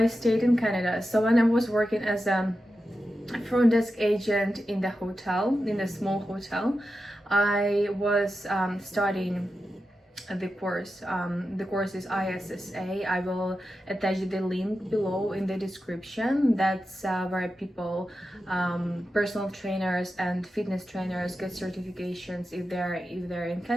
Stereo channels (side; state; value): both; normal; correlation 0.91